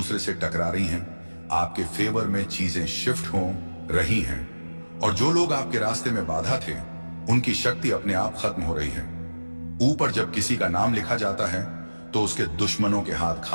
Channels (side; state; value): both; inverted; correlation -1.00